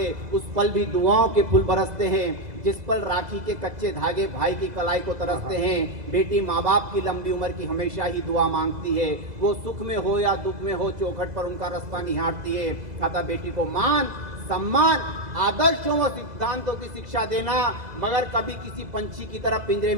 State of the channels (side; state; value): left; late; 2.0 ms